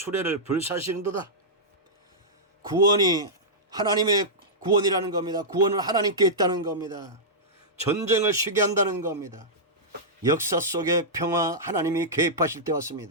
불사시는도다. 구원이 하나님의 구원이라는 겁니다. 구원은 하나님께 있다는 겁니다. 전쟁을 쉬게 한다는 겁니다. 역사 속의 평화 하나님이 개입하실 때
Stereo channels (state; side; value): normal; both; correlation -0.12